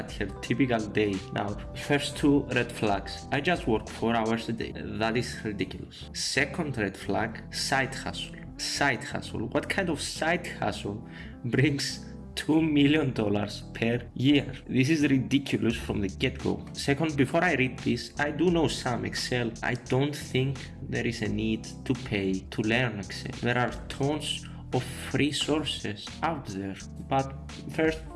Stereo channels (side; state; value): both; identical; correlation 1.00